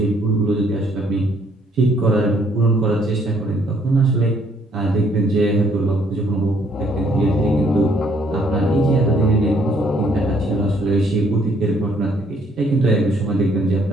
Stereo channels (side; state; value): both; normal; correlation 0.66